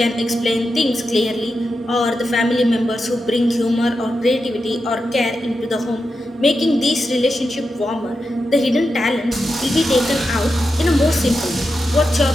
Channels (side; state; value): both; normal; correlation 0.89